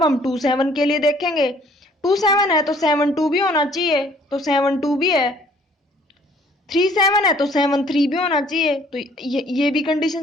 हम 2 7 के लिए देखेंगे, 2 7 है तो 7 2 भी होना चाहिए, तो 7 2 भी है। 3 7 है तो 7 3 भी होना चाहिए, तो ये भी कंडीशन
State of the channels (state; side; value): normal; both; correlation 0.58